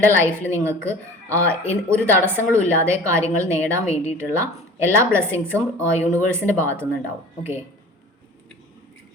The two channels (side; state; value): both; normal; correlation 0.42